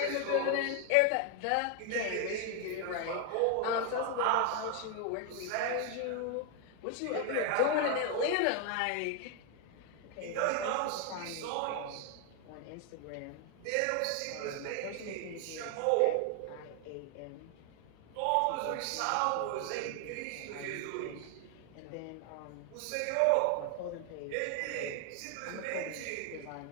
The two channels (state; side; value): different; both; correlation 0.00